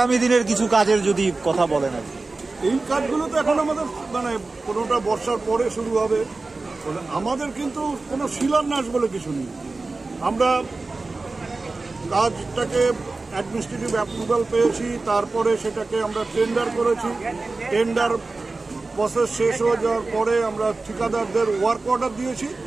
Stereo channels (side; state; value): left; quieter; 3.5 dB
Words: দিনের কিছু কাজের যদি কথা বলেন। আর এই কাজগুলো তো এখন আমাদের কোনোটা বর্ষার পরে শুরু হবে। আমাদের কিন্তু কোনো শিলান্যাস বলে কিছু নেই। আমরা কাজটাকে অ্যাডমিনিস্ট্রেটিভ অ্যাপ্রুভাল পেয়েছি, তারপরে সেটাকে আমরা টেন্ডার করেছি। টেন্ডার প্রসেস শেষ হয়ে যাওয়ার পরে আমরা ঠিকাদারদের ওয়ার্ক অর্ডার দিয়েছি।